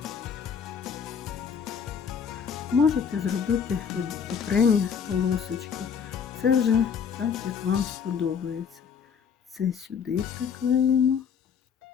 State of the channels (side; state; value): right; quieter; 6.9 dB